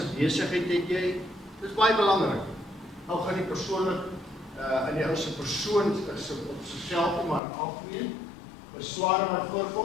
besigheid het jy? Dis baie belangrik. Nou gaan die persoonlik in die ou se persoon is op sigself maar algemeen. Besware wat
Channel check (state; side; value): drops out; right; at 7.4 s